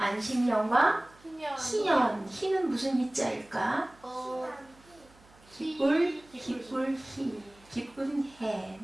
희년. 희는 무슨 희자일까? 기쁠, 희. 기쁜 해.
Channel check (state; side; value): noise; right; hum, 27 dB below the sound